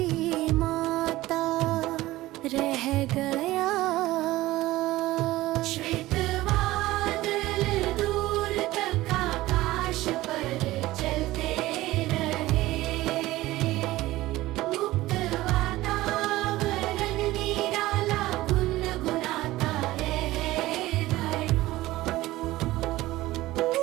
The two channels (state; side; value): quieter; left; 17.4 dB